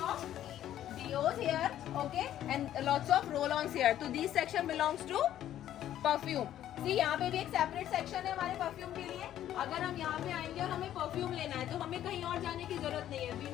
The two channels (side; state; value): right; quieter; 11.8 dB